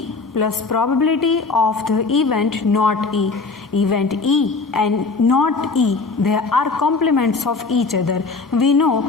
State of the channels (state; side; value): quieter; right; 4.1 dB